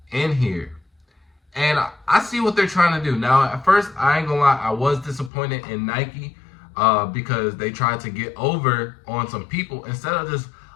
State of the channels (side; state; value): right; drops out; at 5.3 s